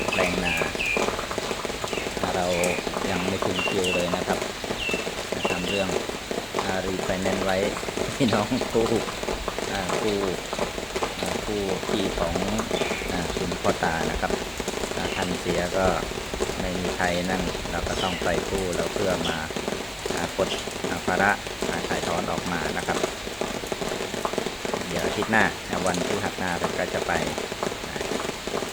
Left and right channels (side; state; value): right; noise; hiss, 20 dB below the sound